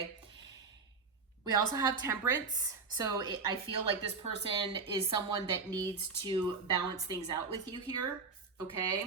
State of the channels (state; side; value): quieter; left; 4.6 dB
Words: We also have Temperance. So I feel like this person is someone that needs to balance things out with you here,